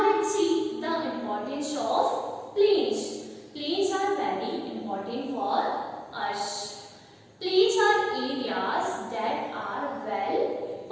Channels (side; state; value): both; identical; correlation 1.00